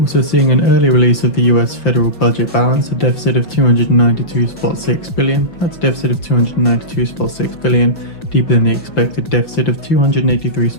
seeing an early release of the US federal budget balance, a deficit of 292.6 billion. That's a deficit of 292.6 billion, deeper than the expected deficit of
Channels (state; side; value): late; right; 5.8 ms